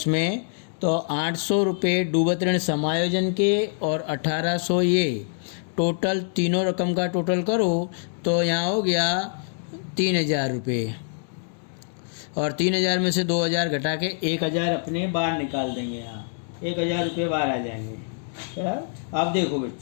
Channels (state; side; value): silent; right; digital silence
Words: तो 800 रुपये डूबत ऋण समायोजन के और 1800 ये टोटल, तीनों रकम का टोटल करो तो यहाँ हो गया 3000 रुपये, और 3000 में से 2000 घटा के 1000 अपने बाहर निकाल देंगे। यहाँ 1000 रुपये बाहर आ जाएंगे। अब देखो